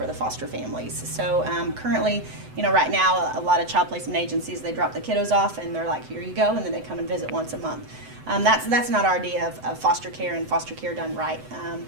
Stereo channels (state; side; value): late; left; 7.9 ms